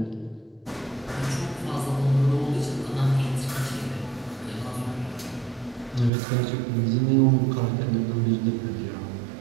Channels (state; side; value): drops out; left; at 6.1 s